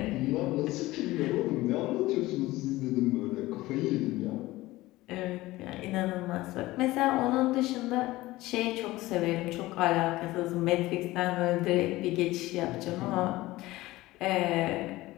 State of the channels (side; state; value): right; quieter; 18.3 dB